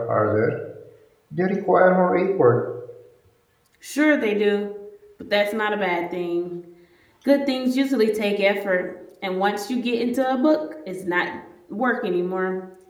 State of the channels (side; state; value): both; identical; correlation 1.00